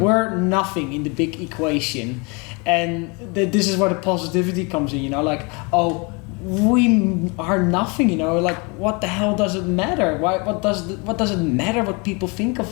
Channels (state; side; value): quieter; right; 30.5 dB